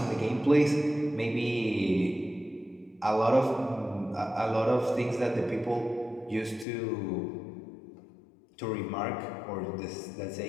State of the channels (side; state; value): right; drops out; at 6.7 s